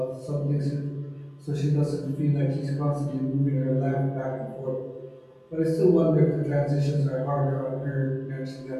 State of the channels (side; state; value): both; identical; correlation 1.00